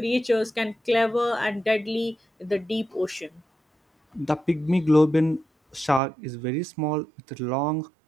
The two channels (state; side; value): drops out; left; at 6.0 s